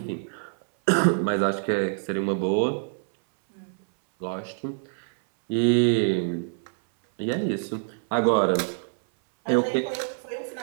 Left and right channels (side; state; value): left; silent; 61 dB below the other